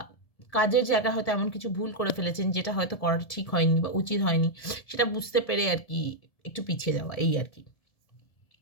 কাজের জায়গায় হয়তো এমন কিছু ভুল করে ফেলেছেন যেটা হয়তো করাটা ঠিক হয়নি বা উচিত হয়নি, সেটা বুঝতে পেরে আর কি একটু পিছিয়ে যাওয়া, এই আর কি।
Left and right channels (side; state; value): right; late; 1.7 ms